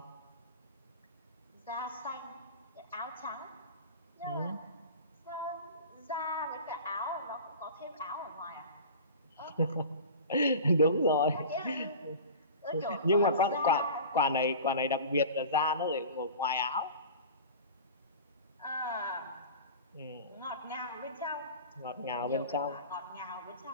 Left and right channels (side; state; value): both; inverted; correlation -0.36